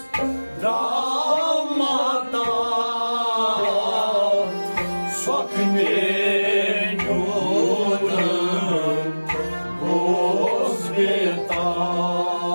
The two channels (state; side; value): inverted; both; correlation -1.00